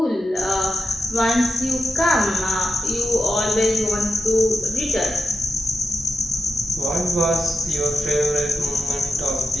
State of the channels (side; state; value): both; normal; correlation 0.89